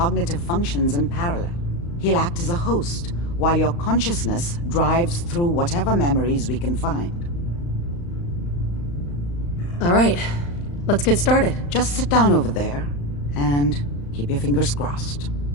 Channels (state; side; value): late; right; 35 ms